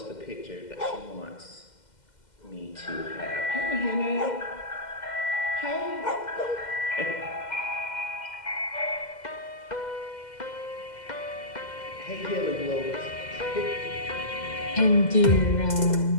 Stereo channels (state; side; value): late; right; 2.1 ms